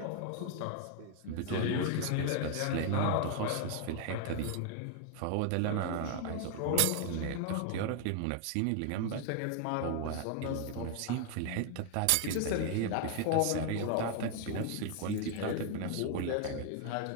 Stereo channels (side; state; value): both; different; correlation 0.00